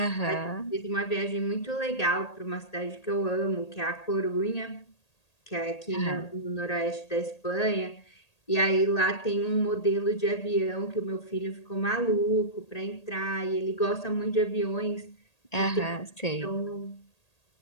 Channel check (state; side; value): late; right; 1.8 ms